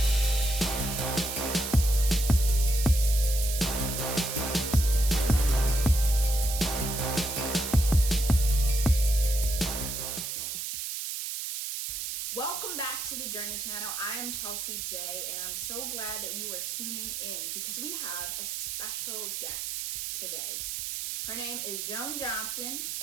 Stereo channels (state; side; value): noise; right; hiss, 4 dB below the sound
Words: Welcome back to the Journey channel. I am Chelsea J, and I'm so glad that you are tuning in because we have a special guest today. Her name is Joan Johnson,